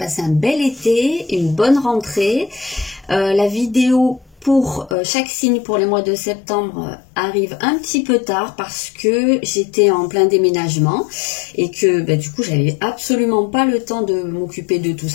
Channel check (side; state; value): right; drops out; at 5.0 s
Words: un bel été, une bonne rentrée. La vidéo pour chaque signe pour les mois de septembre arrive un petit peu tard parce que j'étais en plein déménagement et que du coup j'avais absolument pas le temps de m'occuper de tout